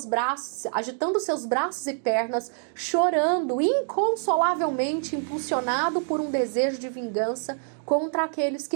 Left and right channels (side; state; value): left; silent; digital silence